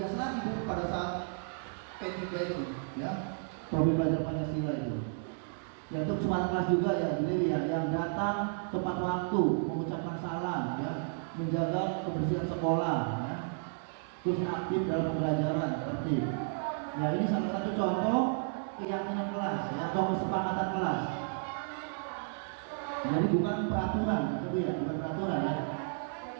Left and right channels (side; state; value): left; silent; digital silence